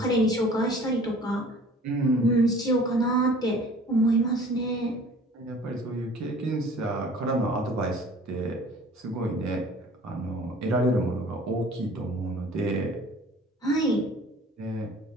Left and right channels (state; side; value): normal; both; correlation 0.48